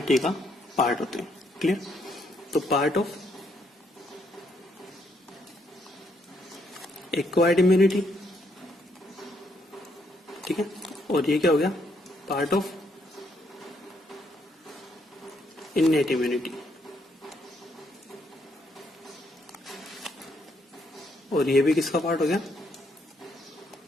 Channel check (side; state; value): both; normal; correlation 0.74